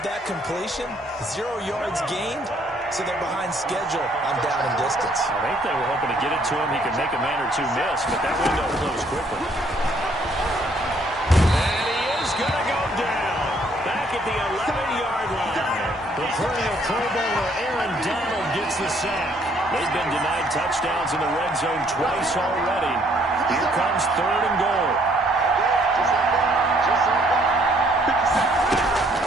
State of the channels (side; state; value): both; normal; correlation 0.65